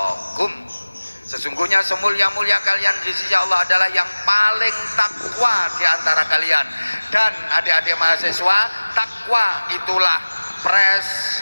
sesungguhnya semulia-mulia kalian di sisi Allah adalah yang paling takwa di antara kalian. Dan adik-adik mahasiswa, takwa itulah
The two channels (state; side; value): inverted; both; correlation -1.00